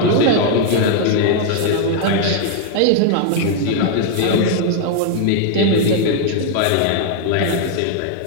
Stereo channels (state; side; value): different; both; correlation 0.00